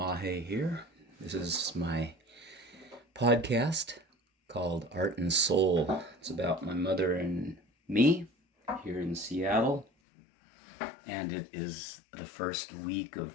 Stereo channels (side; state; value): right; drops out; at 9.9 s